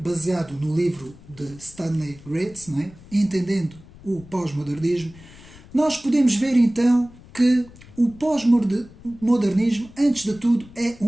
no livro de Stanley Grenz, não é? Entendendo o pós-modernismo, nós podemos ver então que o pós-modernismo, antes de tudo, é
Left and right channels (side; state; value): left; noise; rumble, 21 dB below the sound